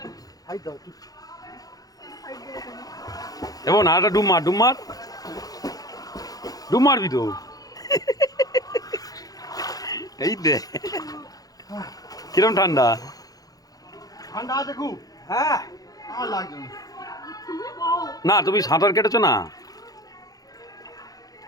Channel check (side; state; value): right; late; 0.18 ms